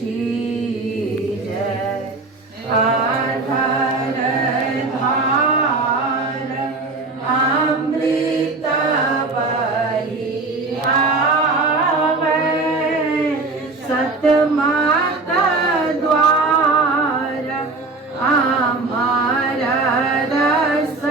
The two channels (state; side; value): quieter; left; 3.5 dB